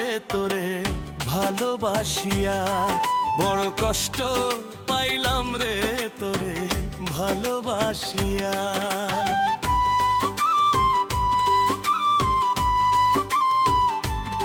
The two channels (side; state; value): both; identical; correlation 1.00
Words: তোরে ভালোবাসিয়া, বড় কষ্ট পাইলাম রে তোরে ভালোবাসিয়া।